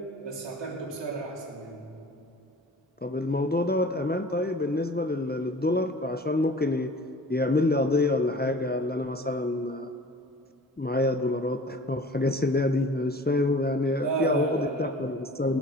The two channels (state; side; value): normal; both; correlation 0.44